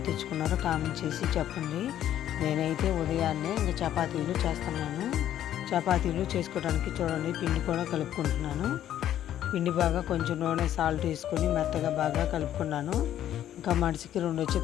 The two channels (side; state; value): right; quieter; 11.5 dB